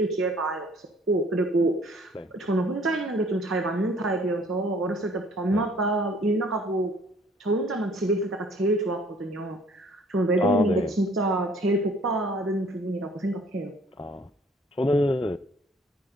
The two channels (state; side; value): normal; both; correlation 0.56